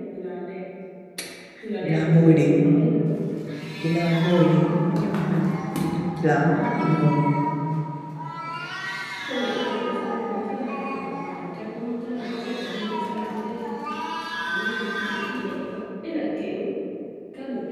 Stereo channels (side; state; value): both; identical; correlation 1.00